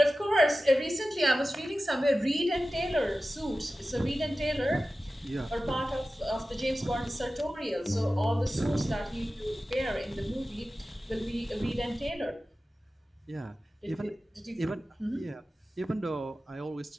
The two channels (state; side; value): normal; both; correlation 0.95